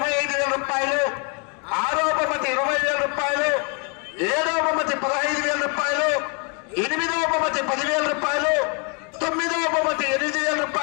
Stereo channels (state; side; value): quieter; right; 33.6 dB